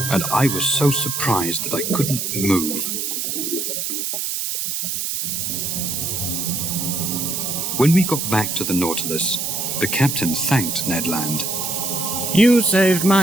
and I was so surprised that I couldn't move. When we got back to the Nautilus, the captain thanked Ned Land. You saved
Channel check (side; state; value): right; noise; hiss, 2 dB below the sound